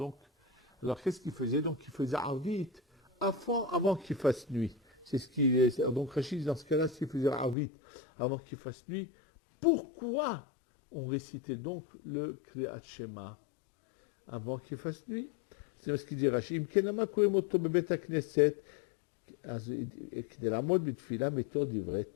alors qu'est-ce qu'ils faisaient? Donc, ils faisaient arvit avant qu'il fasse nuit. C'est ce qui est. Donc Rachid, dans ce cas-là, s'il faisait Arvit avant qu'il fasse nuit, pourquoi on récitait donc le Kriyat Shema avant qu'il fasse nuit? C'est ce qu'il dit Rachid.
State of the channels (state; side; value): drops out; right; at 7.6 s